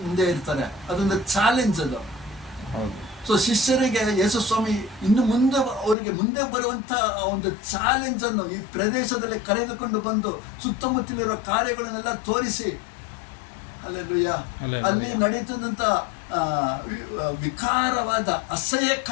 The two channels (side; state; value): right; drops out; at 6.0 s